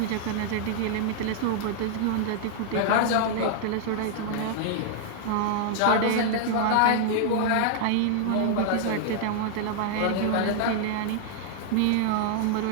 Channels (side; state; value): both; different; correlation -0.01